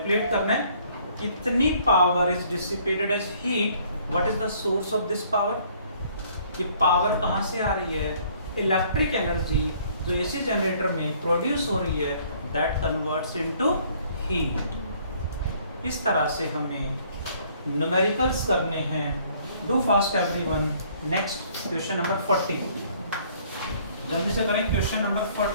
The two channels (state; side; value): inverted; both; correlation -0.60